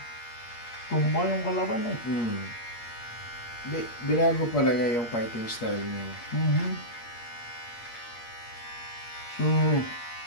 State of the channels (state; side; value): late; right; 8.5 ms